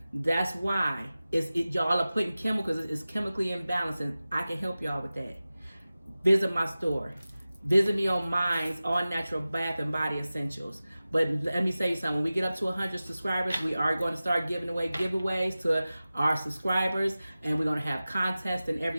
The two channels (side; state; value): both; inverted; correlation -0.96